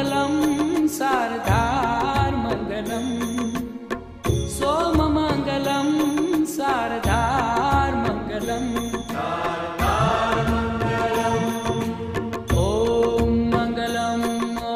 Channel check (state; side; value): identical; both; correlation 1.00